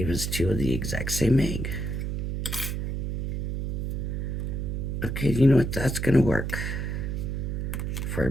us two of the exact same egg. Okay, you know what? That's going to work for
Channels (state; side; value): noise; right; hum, 2 dB below the sound